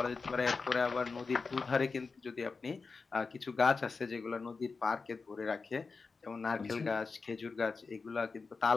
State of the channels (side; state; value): right; quieter; 4.5 dB